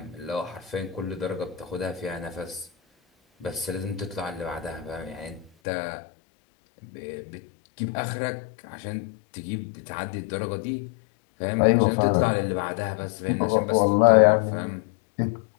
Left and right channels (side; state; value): right; drops out; at 5.5 s